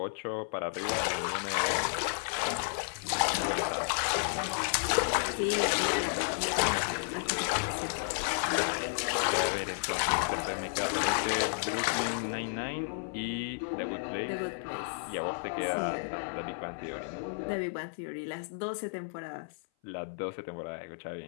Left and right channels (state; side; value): silent; right; 56 dB below the other